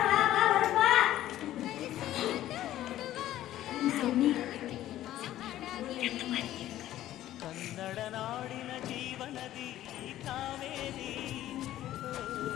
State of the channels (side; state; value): right; quieter; 13.5 dB